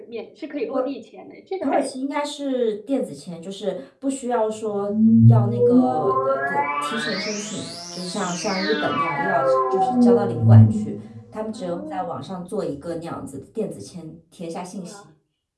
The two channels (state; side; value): identical; both; correlation 1.00